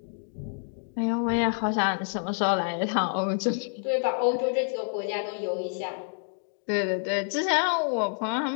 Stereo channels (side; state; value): right; silent; digital silence